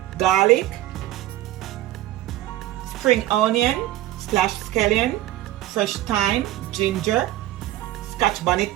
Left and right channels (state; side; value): quieter; left; 15.2 dB